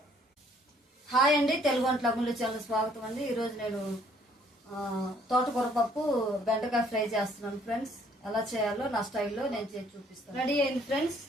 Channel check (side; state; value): both; normal; correlation 0.62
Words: హాయ్ అండి, తెలుగు వంటల ముందు చాలా స్వాగతం అండి. ఈరోజు నేను తోటకూర పప్పు బెండకాయ ఫ్రై చేస్తున్నాను ఫ్రెండ్స్. ఎలా చేయాలో నా స్టైల్లో నేను చేసి చూపిస్తాను. రెడీ అయింది ఫ్రెండ్స్.